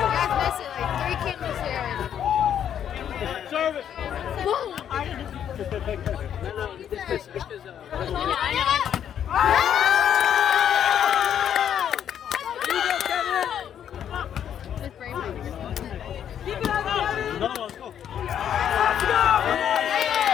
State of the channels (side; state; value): right; quieter; 9.4 dB